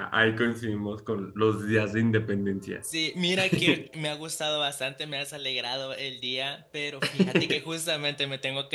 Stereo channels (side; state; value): both; identical; correlation 1.00